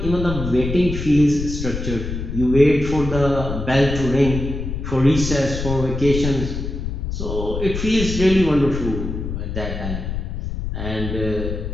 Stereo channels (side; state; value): left; noise; rumble, 5 dB below the sound